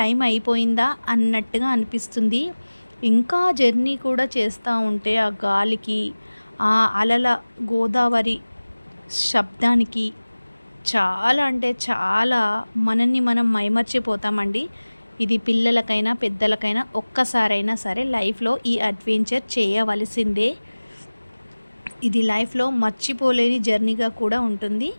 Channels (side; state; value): both; inverted; correlation -1.00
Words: అయిపోయిందా అన్నట్టుగా అనిపిస్తుంది. ఇంకా జర్నీ కూడా చేస్తూ ఉంటే ఆ గాలికి, ఆ అలల గోదావరి శబ్దానికి చాలా అంటే చాలా మనల్ని మనం మైమర్చిపోతామండి. ఇది పిల్లలకైనా పెద్దలకైనా ఒక్కసారైనా సరే లైఫ్లో ఈ అడ్వెంచర్ చేయవలసిందే. ఇది లైఫ్లో మర్చిపోలేని జర్నీగా కూడా ఉంటుంది.